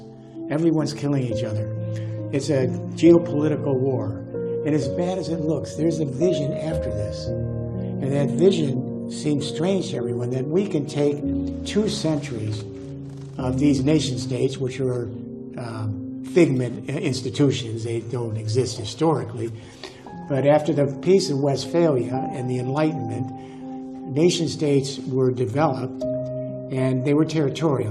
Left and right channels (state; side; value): identical; both; correlation 1.00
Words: everyone's killing each other. It's a geopolitical war. And as bad as it looks, there's a vision after this. And that vision seems strange to everyone, that we can take 2 centuries of these nation states, which are figment institutions, they don't exist historically. But after the Peace of Westphalia and the Enlightenment, nation states were developed, and they were